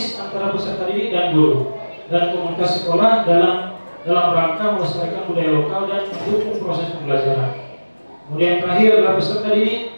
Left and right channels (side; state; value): both; inverted; correlation -1.00